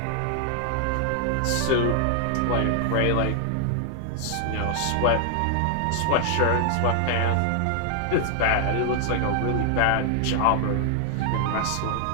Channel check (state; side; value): different; both; correlation 0.00